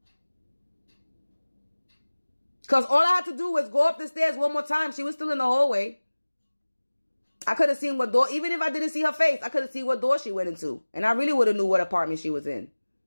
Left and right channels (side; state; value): both; inverted; correlation -1.00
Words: Because all I had to do was go up the stairs one more time. She was still in the hallway. I could have seen what door, even if I didn't see her face, I could have seen what door she went into. And I really would have knew what apartment she was in.